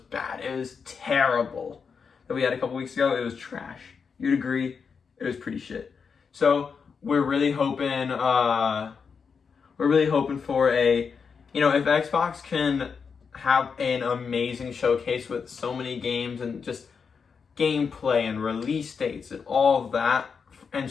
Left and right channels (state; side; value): quieter; right; 5.9 dB